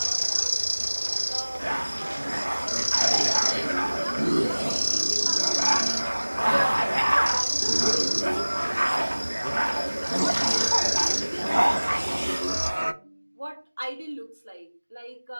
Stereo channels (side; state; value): both; inverted; correlation -1.00